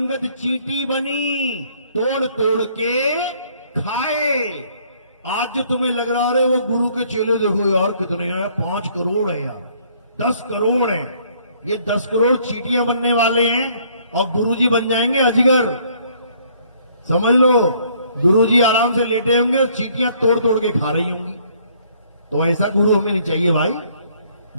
चींटी बनी, तोड़ तोड़ के खाए। आज जो तुम्हें लग रहा है वो गुरु के चेले देखो यार कितने हैं, 5 करोड़ है यार, 10 करोड़ है, ये 10 करोड़ चींटियां बनने वाले हैं और गुरुजी बन जाएंगे अजगर। समझ लो, गुरुजी आराम से लेटे होंगे, चींटियां तोड़ तोड़ के खा रही होंगी। तो ऐसा गुरु हमें नहीं चाहिए भाई,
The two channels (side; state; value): both; inverted; correlation -0.63